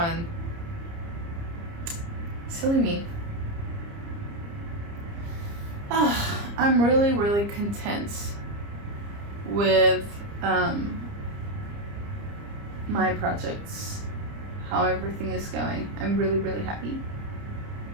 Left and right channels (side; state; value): left; late; 30 ms